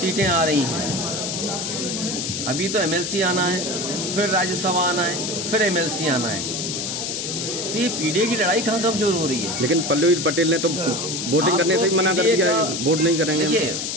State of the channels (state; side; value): noise; left; hiss, 3 dB below the sound